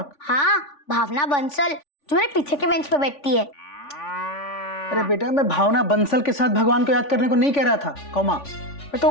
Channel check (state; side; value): late; right; 3.5 ms